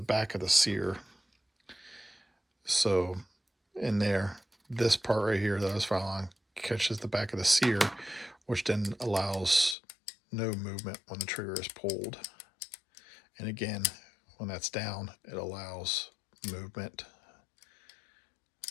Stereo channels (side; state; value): right; drops out; at 9.8 s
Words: of the sear. So in there, this part right here that I was filing catches the back of the sear, which then allows no movement when the trigger is pulled. And again, when that's down, it allows movement